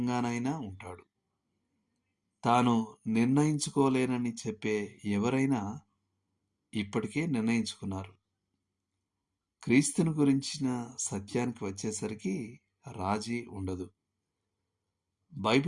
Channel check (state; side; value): identical; both; correlation 1.00